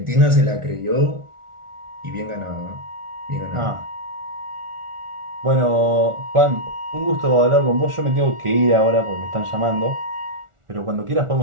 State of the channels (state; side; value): late; left; 1.4 ms